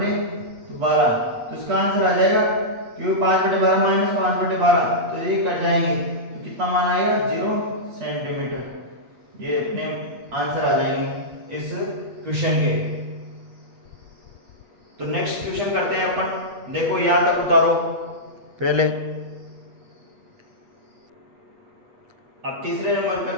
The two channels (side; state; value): left; late; 8.4 ms